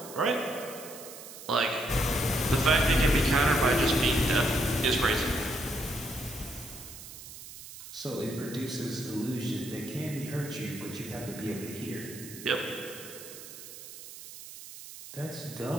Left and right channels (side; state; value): right; noise; hiss, 14 dB below the sound